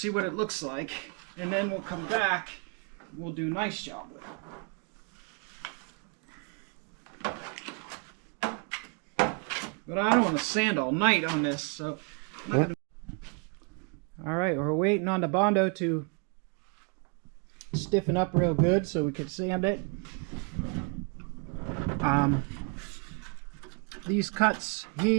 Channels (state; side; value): quieter; left; 36.3 dB